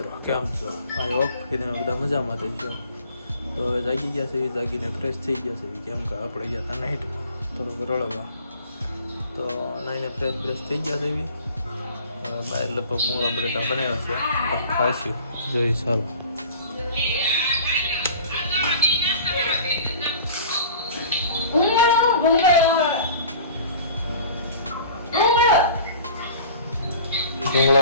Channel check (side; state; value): both; inverted; correlation -0.46